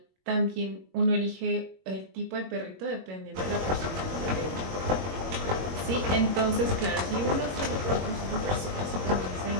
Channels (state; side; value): late; left; 21 ms